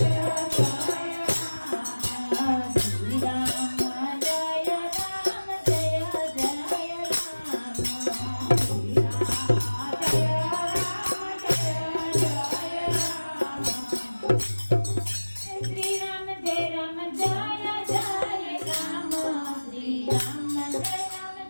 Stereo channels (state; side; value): inverted; both; correlation -1.00